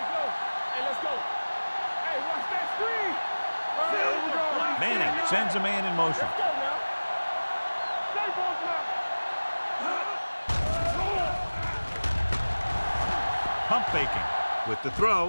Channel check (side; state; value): both; inverted; correlation -1.00